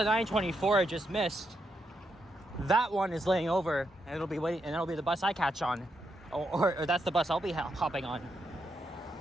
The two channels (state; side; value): normal; both; correlation 0.82